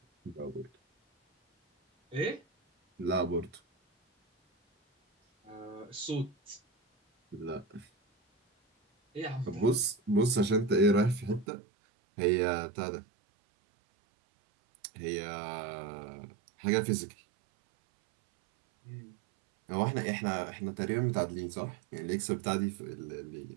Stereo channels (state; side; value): drops out; left; at 11.5 s